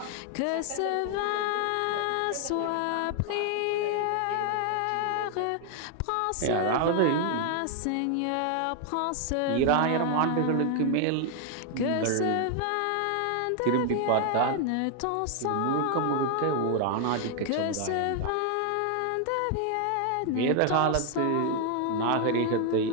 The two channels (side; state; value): both; different; correlation 0.00